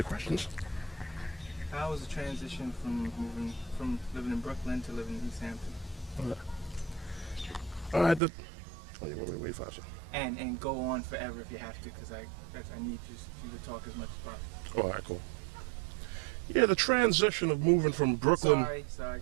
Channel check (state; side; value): drops out; left; at 8.2 s